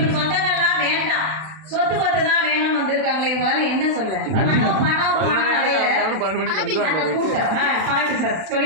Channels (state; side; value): late; left; 32 ms